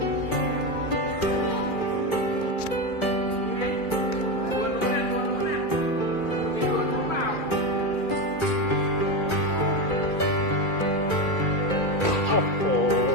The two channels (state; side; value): late; right; 2.4 ms